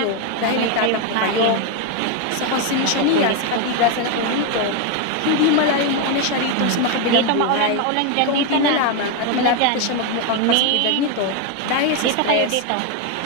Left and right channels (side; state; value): both; different; correlation 0.02